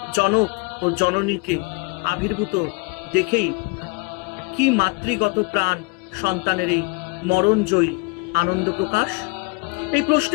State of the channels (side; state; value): right; quieter; 30.2 dB